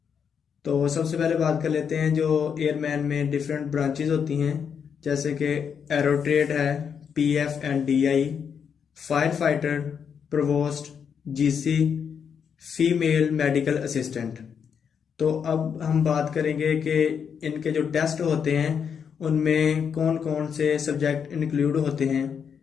तो सबसे पहले बात कर लेते हैं जो एयरमैन में डिफरेंट ब्रांचेस होती हैं, जैसे कि एरोट्रेड है, PF and DI, fire fighter, provost, GC, female medical assistant. तो अब हम बात करेंगे कि इनके जो टेस्ट होते हैं उनमें कौन कौन से सब्जेक्ट इंक्लूड होते हैं।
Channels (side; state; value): right; quieter; 7.1 dB